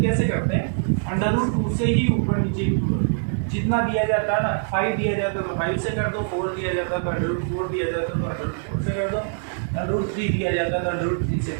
कैसे करते हैं, √2 से ही ऊपर नीचे जितना दिया जाता है ना, 5 दिया जाता है तो 5 से कर दो, 4 दिया जाता है तो √4 दिया जाता है तो √4 से कर दो, √3 दिया जाता है तो √3 से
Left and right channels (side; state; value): left; silent; digital silence